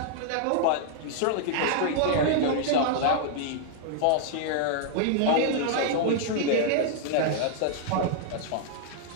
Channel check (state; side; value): different; both; correlation -0.01